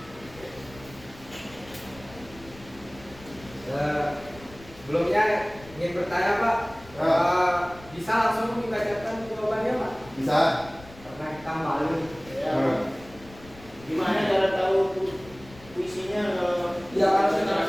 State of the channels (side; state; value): left; noise; rumble, 20 dB below the sound